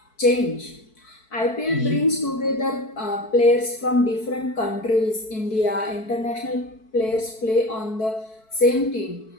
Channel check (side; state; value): right; late; 4.6 ms